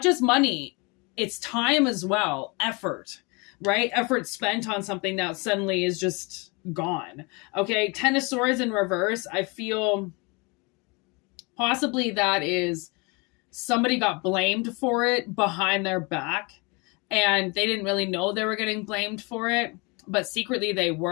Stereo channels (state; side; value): quieter; right; 28.9 dB